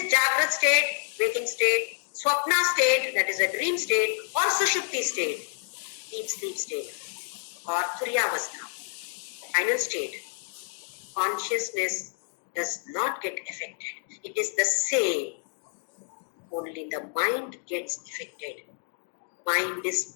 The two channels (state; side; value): silent; right; 59 dB below the other